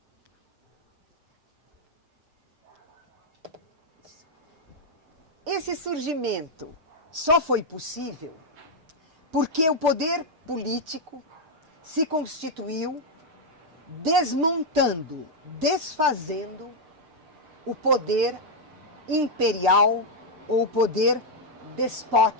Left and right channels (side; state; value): left; late; 6.6 ms